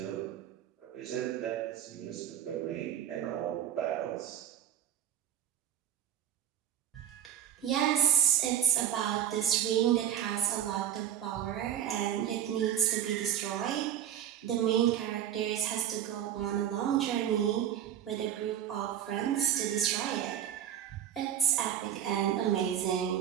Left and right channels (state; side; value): quieter; left; 10.2 dB